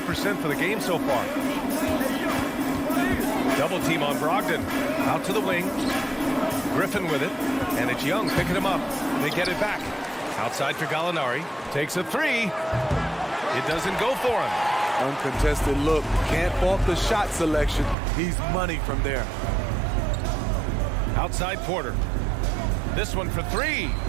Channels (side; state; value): left; drops out; at 17.9 s